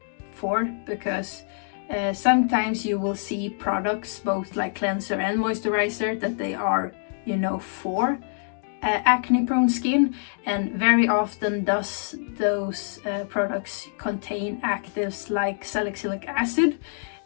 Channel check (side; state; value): right; silent; digital silence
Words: for, because sometimes you will see products, both like cleanser and moisturizer, that they are, you know, for acne prone skin, and very often those products contain actives like salicylic acid,